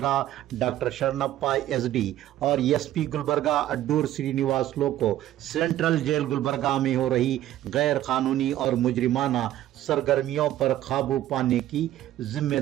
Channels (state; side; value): quieter; left; 13.3 dB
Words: doctor Shannappa SD और SP गुलबर्गा अड्डूर श्रीनिवास लो को सेंट्रल जेल गुलबर्गा में हो रही गैर कानूनी और मुजरिमाना सरगर्मियों पर काबू पाने की